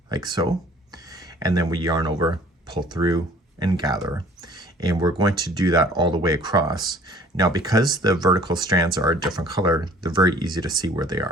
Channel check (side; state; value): both; normal; correlation 0.52